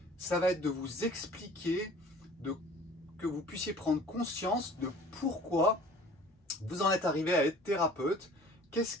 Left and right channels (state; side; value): normal; both; correlation 0.48